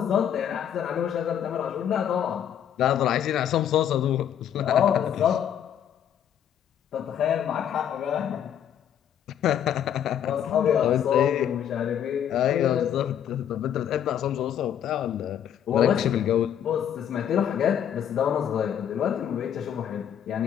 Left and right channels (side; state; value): right; quieter; 9.5 dB